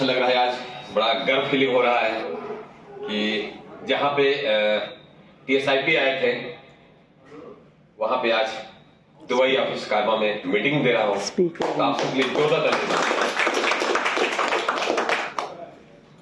लग रहा है, आज बड़ा गर्व फीलिंग हो रहा है कि जहां पे TSIP आए थे वहां पे आज दुबई ऑफिस कारवा में मीटिंग दे रहा हूं। तो आप सबके लिए जोरदार तालियां।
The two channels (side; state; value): both; identical; correlation 1.00